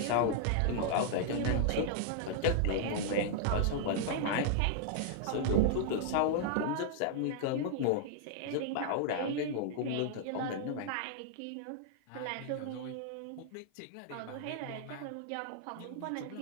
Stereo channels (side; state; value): both; different; correlation -0.01